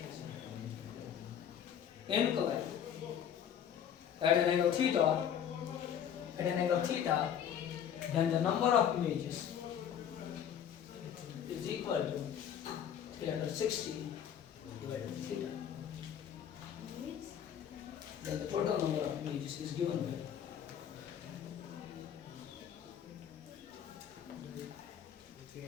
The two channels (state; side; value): quieter; right; 9.0 dB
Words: inclined at an angle theta, then the number of images is equal to 360 divided by theta. Then the total number of images is given by